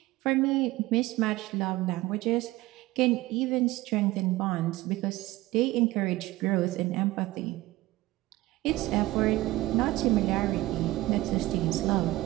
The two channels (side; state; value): left; quieter; 18.1 dB